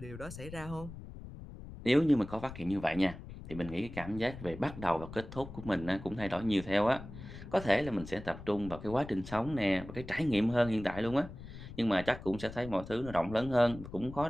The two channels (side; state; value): left; noise; rumble, 13 dB below the sound